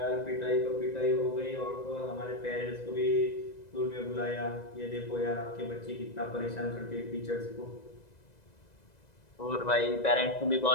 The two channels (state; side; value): late; right; 2.0 ms